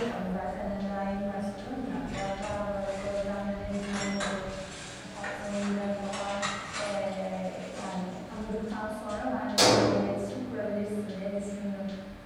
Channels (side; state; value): both; identical; correlation 1.00